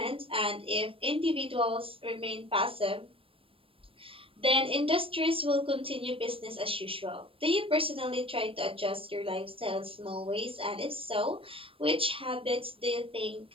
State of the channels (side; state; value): left; late; 0.26 ms